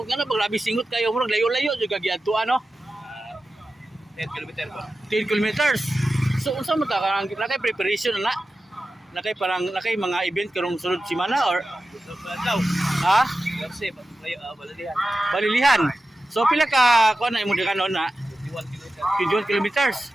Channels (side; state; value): both; normal; correlation 0.93